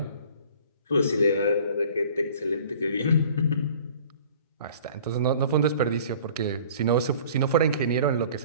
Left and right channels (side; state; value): both; inverted; correlation -0.49